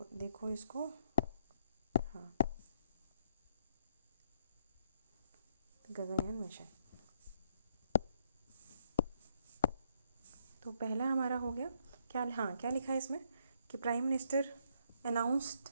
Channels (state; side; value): inverted; both; correlation -0.71